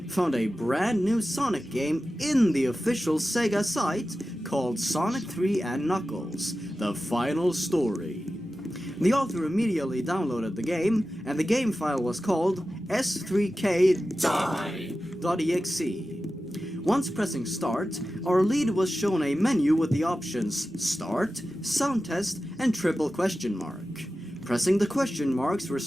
found a brand new Sonic game in the official Sega site called Sonic 3 and Knuckles, the final story. The author immediately downloaded the game, and the game file was called s3k.die.exe. Once pressing start, our lead was shown a menu with the options Start, Sound Test, and triple question mark. Pressing the question marks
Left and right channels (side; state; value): both; normal; correlation 0.93